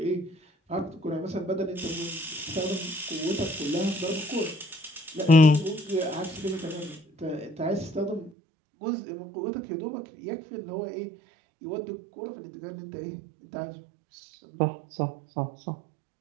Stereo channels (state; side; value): drops out; left; at 8.3 s